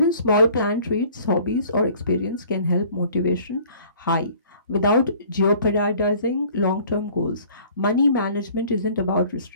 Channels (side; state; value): both; inverted; correlation -0.52